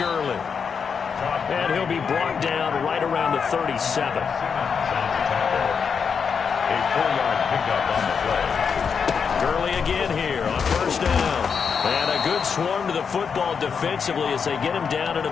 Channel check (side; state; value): right; quieter; 6.3 dB